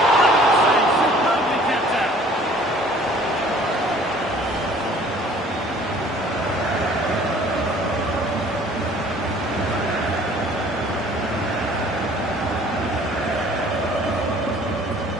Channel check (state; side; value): normal; both; correlation 0.53